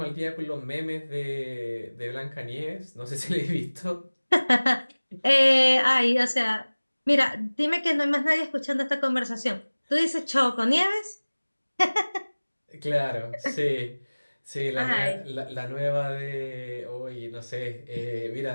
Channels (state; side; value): inverted; both; correlation -1.00